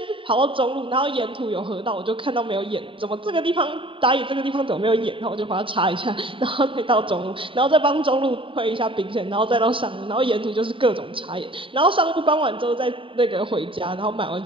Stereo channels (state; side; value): late; left; 0.25 ms